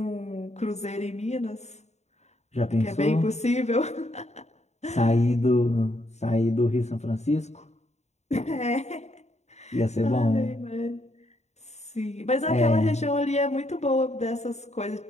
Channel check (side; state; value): right; late; 0.32 ms